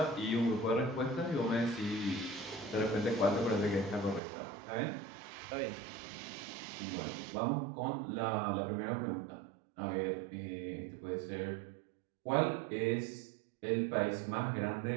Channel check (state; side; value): drops out; left; at 4.2 s